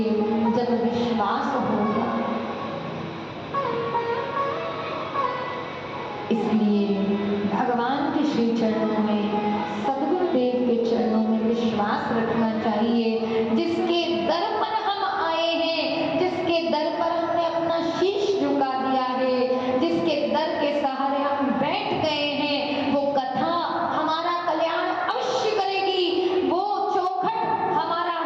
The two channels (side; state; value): both; identical; correlation 1.00